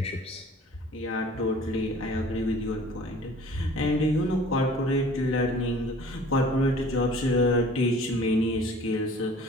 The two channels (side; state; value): both; normal; correlation 0.48